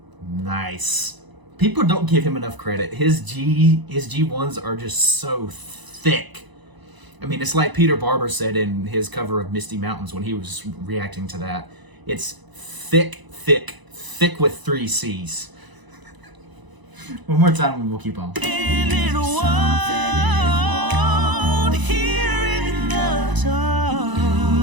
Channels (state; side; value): late; left; 1.0 ms